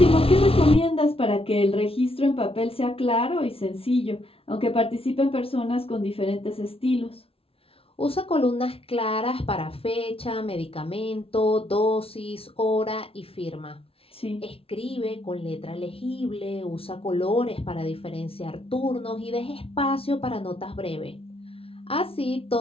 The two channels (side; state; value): right; late; 0.27 ms